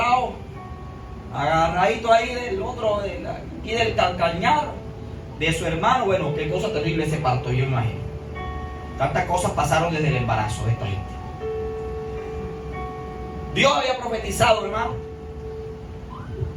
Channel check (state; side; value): identical; both; correlation 1.00